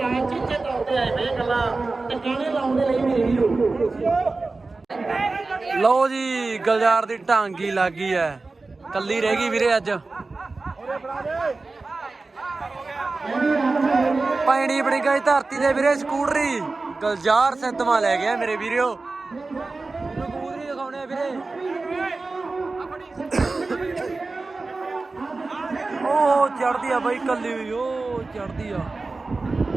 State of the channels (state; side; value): quieter; left; 3.6 dB